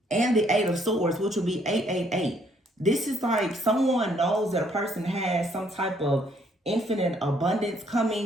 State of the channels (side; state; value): both; normal; correlation 0.67